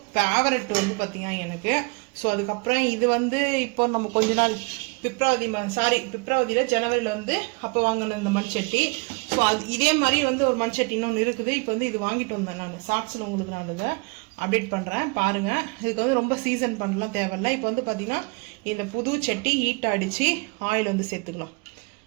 ஃபேவரட் வந்து பார்த்தீங்கன்னா எனக்கு. ஸோ அதுக்கப்புறம் இது வந்து இப்போ நம்ம கொஞ்ச நாள் பிப்ரவரியில் ஜனவரியில் வந்து அப்போ வாங்கின இந்த மண் சட்டி. ஸோ அது இதே மாதிரி வந்து ஒரு மண் சட்டி இன்னொன்று இருக்குது. இப்போ வந்து இது வாங்கிட்டு வந்தேன் நான். ஷார்ட்ஸில் உங்களுக்கு நான் இதை அப்டேட் பண்ணுறேன் பாருங்கள். இதுக்கு வந்து ரொம்ப சீசன் பண்ணலாம் தேவையில்லை. இப்போ வந்து பார்த்தீங்கன்னா இந்த புது சட்டி ஹீட் அடித்து ஆயில் வந்து சேர்த்துக்கலாம்.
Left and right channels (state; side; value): quieter; left; 29.9 dB